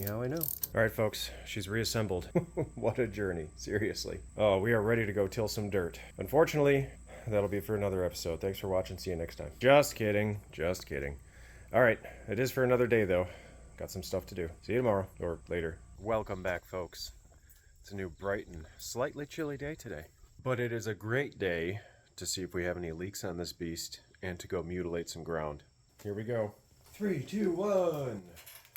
how I know. Alright folks, she's reassembled. What a journey, seriously. Oh, we are ready to go till some dirt. Unfortunately, that'll be for another episode. Thanks for watching, see you next time. Just kidding, just kidding. Alright, it is for another day though. Got some stuff to do. See you tomorrow, or later. Welcome back folks. It's a new bright and slightly chilly day today. But it is a great day to see if we have any leaks on this beast and to go mutilate some ground. Here we go. 3, 2, 1.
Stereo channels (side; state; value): both; identical; correlation 1.00